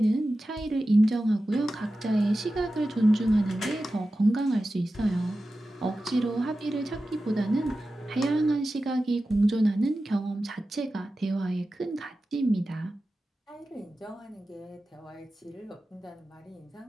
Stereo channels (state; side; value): normal; both; correlation 0.94